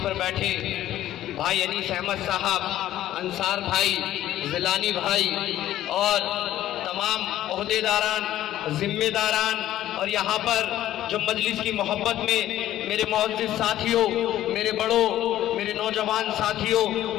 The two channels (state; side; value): quieter; right; 13.2 dB